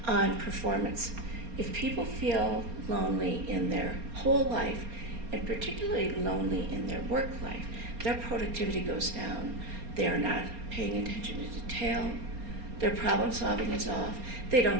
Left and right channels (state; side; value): late; left; 4.3 ms